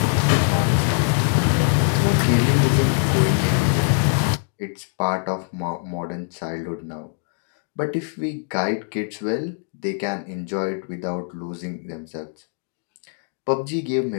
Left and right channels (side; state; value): right; silent; 58 dB below the other